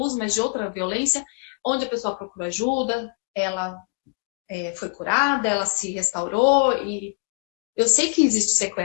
mas de outra violência, onde a pessoa procura ajuda, ela foi curada, ela se restaurou, e eu sei que existem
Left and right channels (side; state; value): right; quieter; 31.0 dB